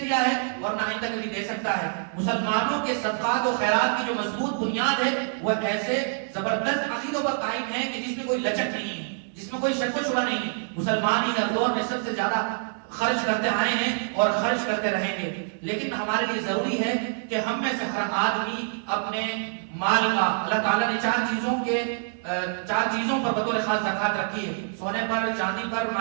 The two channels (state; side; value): silent; left; 57 dB below the other